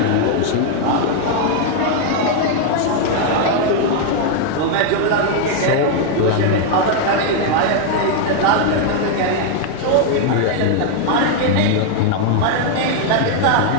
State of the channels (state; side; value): different; both; correlation 0.00